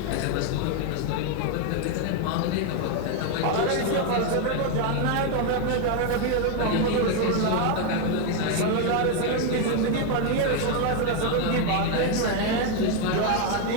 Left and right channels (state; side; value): different; both; correlation 0.01